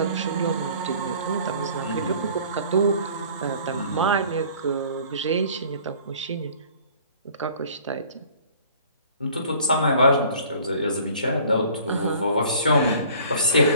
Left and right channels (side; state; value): both; inverted; correlation -0.51